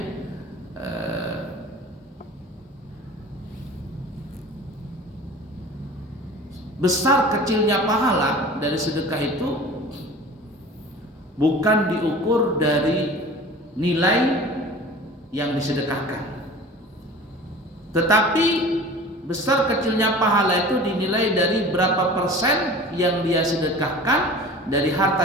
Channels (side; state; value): both; normal; correlation 0.40